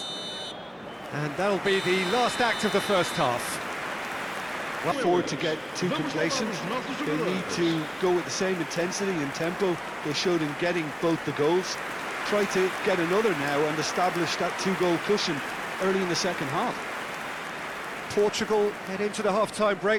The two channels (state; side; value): identical; both; correlation 1.00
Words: And that'll be the last act of the first half. Forward to get too complacent. They need to go with the same intensity and tempo they showed in getting both the goals. Try to get another now and establish that two-goal cushion early in the second half. Portugal head into the half-time